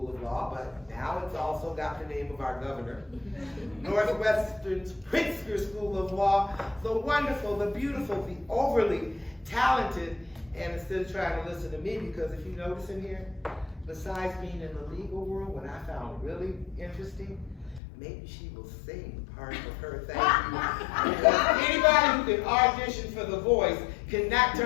of Law, but now it's also got the name of our governor. Northwestern's Pritzker School of Law, the wonderful, the beautiful, the overly talented, and instead of trying to listen to me, because if you notice in here, besides being in the legal world, what I found really interesting, maybe she will sing part of her thank you. Because anybody who can audition for The Voice cannot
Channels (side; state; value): right; drops out; at 17.8 s